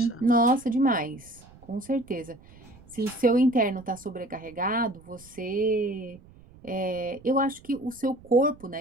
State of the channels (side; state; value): right; noise; rumble, 23 dB below the sound